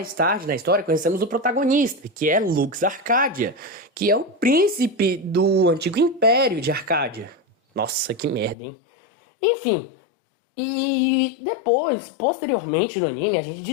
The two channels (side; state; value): right; drops out; at 8.6 s